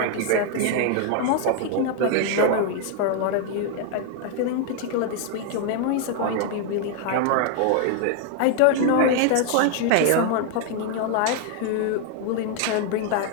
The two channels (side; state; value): both; different; correlation 0.00